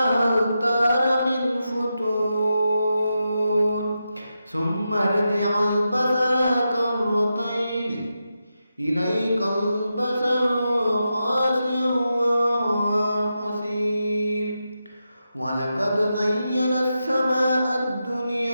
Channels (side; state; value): both; inverted; correlation -0.88